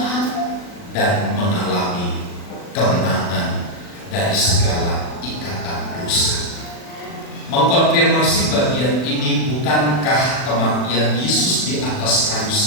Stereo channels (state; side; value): late; right; 40 ms